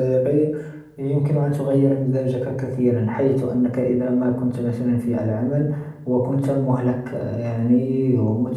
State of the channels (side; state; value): both; identical; correlation 1.00